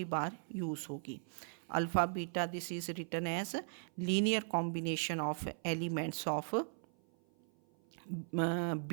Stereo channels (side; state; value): left; silent; 52 dB below the other